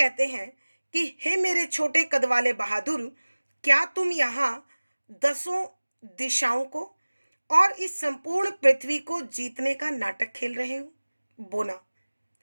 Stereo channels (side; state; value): both; inverted; correlation -1.00